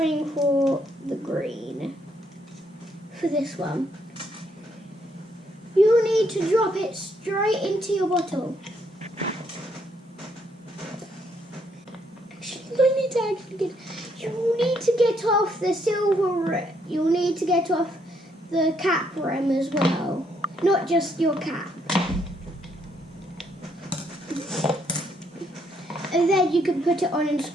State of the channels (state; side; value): normal; both; correlation 0.72